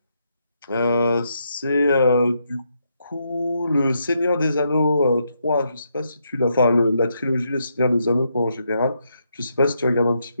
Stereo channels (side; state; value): both; inverted; correlation -0.79